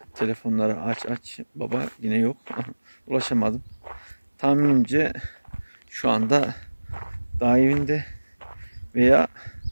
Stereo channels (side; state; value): both; inverted; correlation -1.00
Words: telefonları aç baba yine yok. Ulaşamadım. Tahminimce şu anda dağ evinde veya